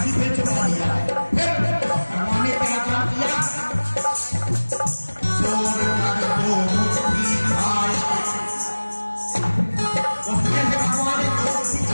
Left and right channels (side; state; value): both; inverted; correlation -1.00